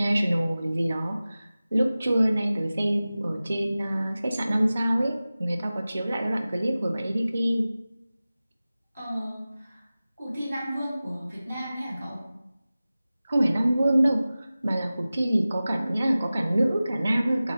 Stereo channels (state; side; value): inverted; both; correlation -0.96